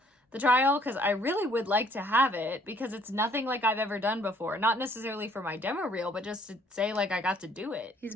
the trial. Because I really would like to have it, because it's nothing like I've ever done before. Not necessarily for my demo reel, but just to say like I got to do it.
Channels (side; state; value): both; normal; correlation 0.61